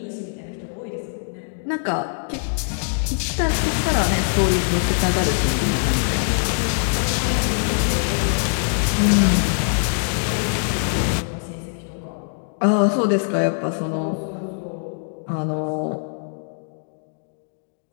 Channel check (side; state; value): right; silent; digital silence